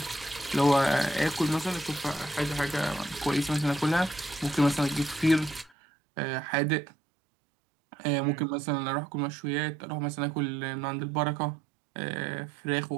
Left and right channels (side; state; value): left; drops out; at 5.7 s